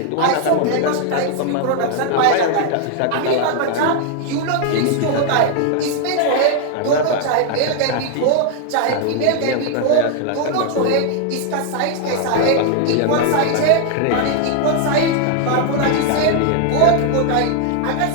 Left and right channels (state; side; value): different; both; correlation 0.00